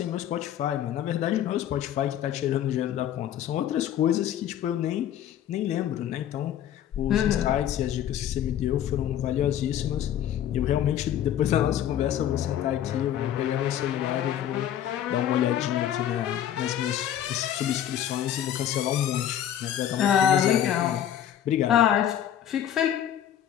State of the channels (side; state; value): right; quieter; 10.7 dB